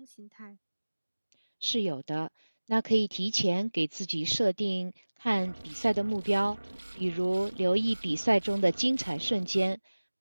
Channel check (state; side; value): inverted; both; correlation -1.00